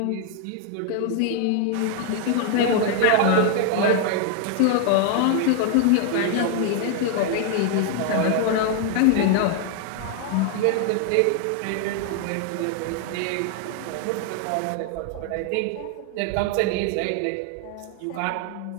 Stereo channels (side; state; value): both; different; correlation 0.00